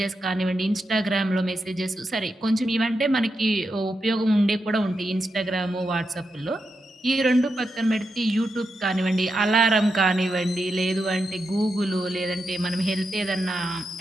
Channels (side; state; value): both; normal; correlation 0.86